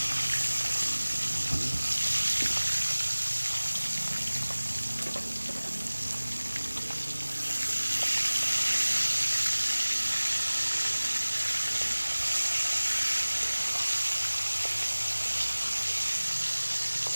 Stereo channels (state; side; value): inverted; both; correlation -1.00